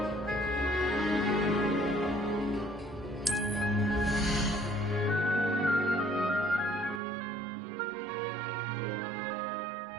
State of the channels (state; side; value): drops out; left; at 7.0 s